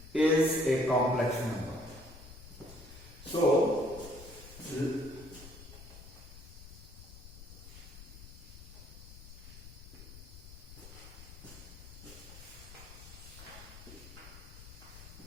is a complex number. So,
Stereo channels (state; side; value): noise; left; rumble, 15 dB below the sound